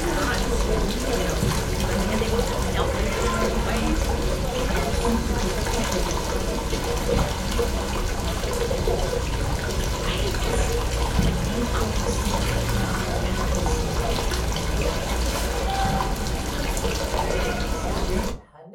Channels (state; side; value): identical; both; correlation 1.00